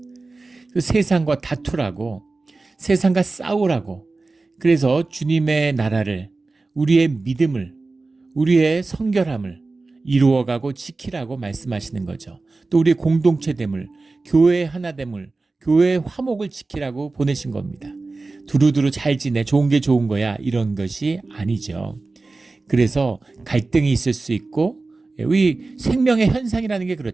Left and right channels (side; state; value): left; quieter; 3.6 dB